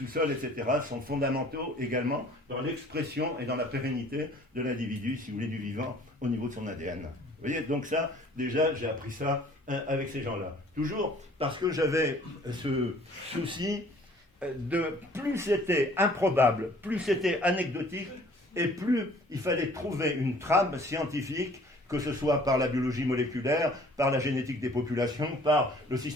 etc., sont fondamentaux également dans l'expression et dans la pérennité de l'individu, si vous voulez, du vivant, au niveau de son ADN. Vous voyez, donc ça, déjà, j'ai appris ça avec ces gens-là. Toujours parce que j'avais ce souci de plus c'était improbable, plus c'était anecdotique, et plus il fallait trouver une trame scientifique, que ce soit par la biologie moléculaire, par la génétique des populations, par le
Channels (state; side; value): normal; both; correlation 0.54